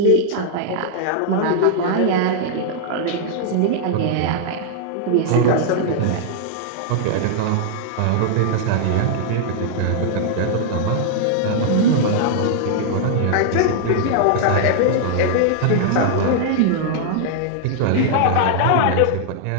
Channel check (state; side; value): different; both; correlation -0.01